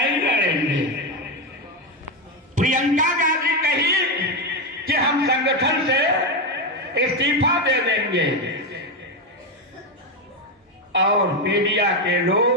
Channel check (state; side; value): normal; both; correlation 0.09